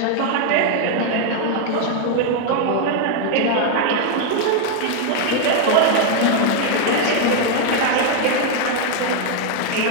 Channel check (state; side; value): different; both; correlation 0.00